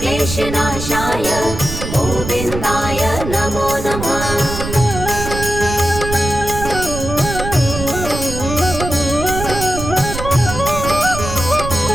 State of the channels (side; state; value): right; noise; rumble, 7 dB below the sound